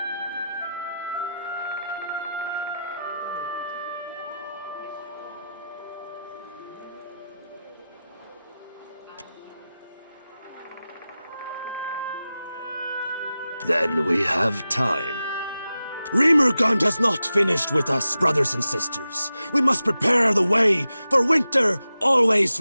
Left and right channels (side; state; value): both; inverted; correlation -0.92